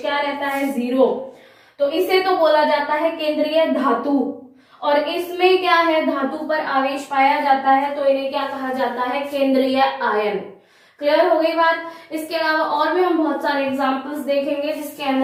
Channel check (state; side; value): identical; both; correlation 1.00